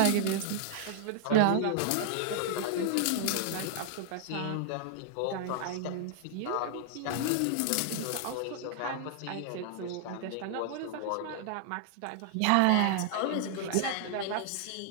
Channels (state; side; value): different; both; correlation -0.01